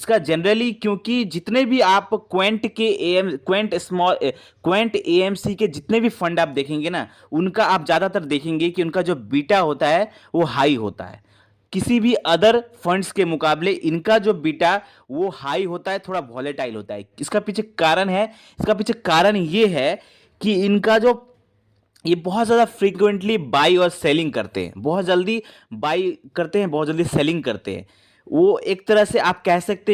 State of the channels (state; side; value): identical; both; correlation 1.00